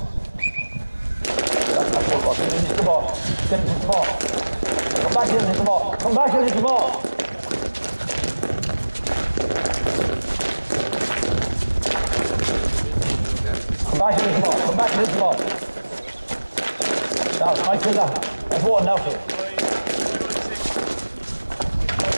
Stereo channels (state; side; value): inverted; both; correlation -1.00